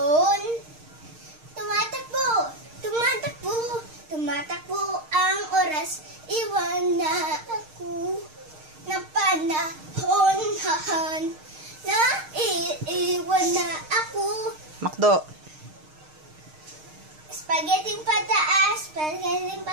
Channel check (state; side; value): late; left; 6.5 ms